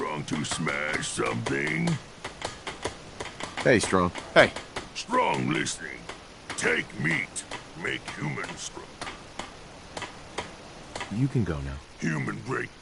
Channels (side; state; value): both; identical; correlation 1.00